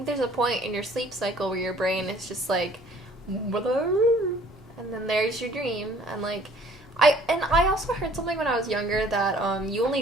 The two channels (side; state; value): both; normal; correlation 0.55